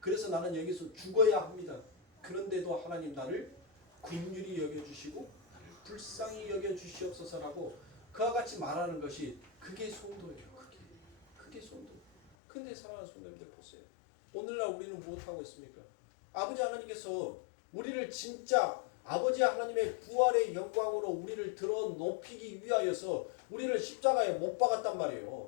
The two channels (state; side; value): drops out; right; at 12.3 s